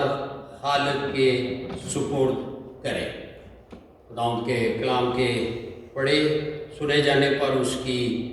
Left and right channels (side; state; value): both; identical; correlation 1.00